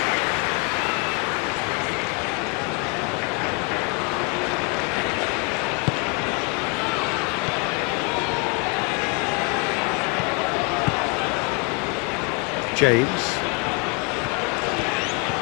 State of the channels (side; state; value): right; quieter; 32.2 dB